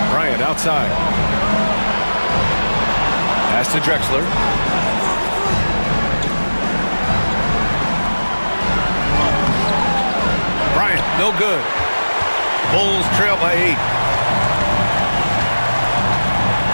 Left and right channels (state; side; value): inverted; both; correlation -1.00